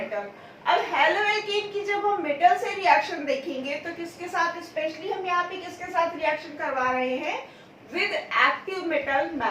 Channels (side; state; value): both; identical; correlation 1.00